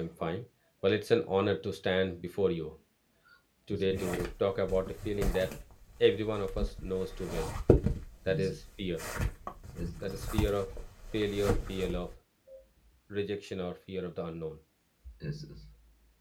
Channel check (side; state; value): both; identical; correlation 1.00